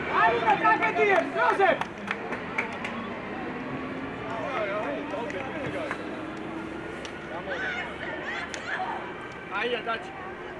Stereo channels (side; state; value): left; noise; rumble, 28 dB below the sound